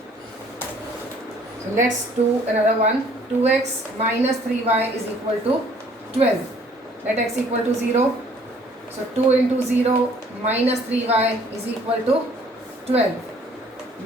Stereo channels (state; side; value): normal; both; correlation 0.58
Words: So let's do another one. 2x minus 3y is equal to 12. Let x equal to 0. So 2 into 0 minus 3y is equal to 12.